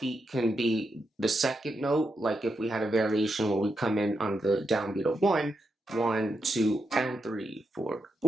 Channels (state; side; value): normal; both; correlation 0.84